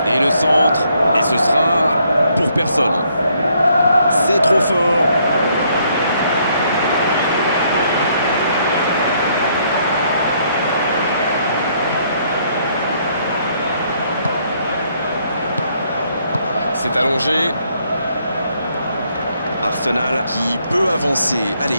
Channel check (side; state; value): both; inverted; correlation -0.70